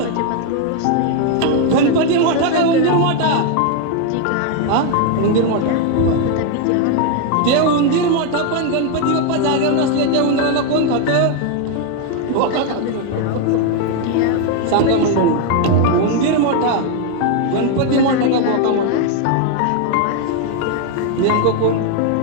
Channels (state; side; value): different; both; correlation 0.01